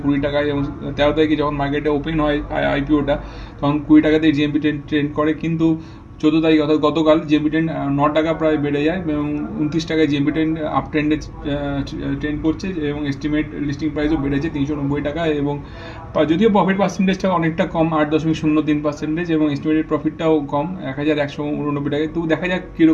20 টাকায়, এবং 13 তারিখে যখন মার্কেটে ওপেন হয় আইপিওটা তখন 20 টাকাতেই জিএমপি ট্রেন্ড করে। কিন্তু 14 তারিখ অর্থাৎ গতকাল জিএমপি ট্রেন্ড 9 টাকা প্রায় বেড়ে যায় এবং 29 টাকায় জিএমপি ট্রেন্ড আপ ট্রেন্ডে ট্রেন্ড করছে, এবং এস্টিমেট লিস্টিং প্রাইসও বেড়েছে 390 টাকা। এবং যদিও প্রফিট পার্সেন্টেজটা অনেকটা কম, 8.03%, এবং এস্টিমেটেড প্রফিটটাও কম 1189 টাকায়। তো দেখা যাক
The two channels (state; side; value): identical; both; correlation 1.00